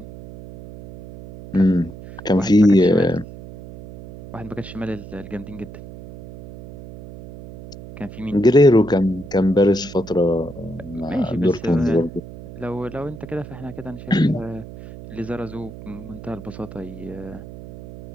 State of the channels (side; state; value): right; noise; hum, 15 dB below the sound